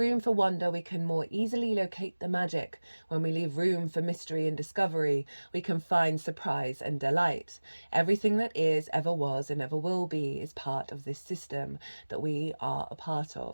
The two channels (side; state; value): both; inverted; correlation -1.00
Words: for wonder, we can more easily locate the magic. When we leave room for mystery and discovery, we can find surprise and delight. Everything that is, ever was, and ever will be is part of this system that we are a part